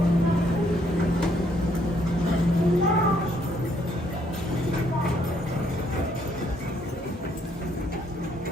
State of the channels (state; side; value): normal; both; correlation 0.69